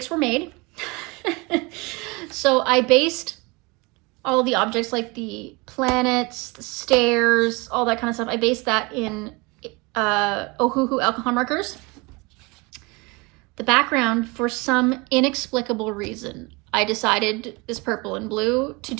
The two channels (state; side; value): quieter; left; 26.4 dB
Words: were made. So I based all the objects like the planets, the stairs, all that kind of stuff. I based that in Ohuhu alcohol markers. The background, for some inexplicable reason, I decided this purple and blue to